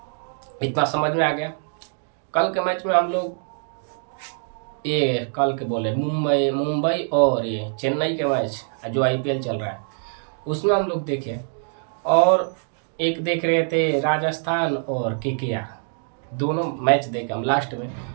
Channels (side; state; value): left; silent; 63 dB below the other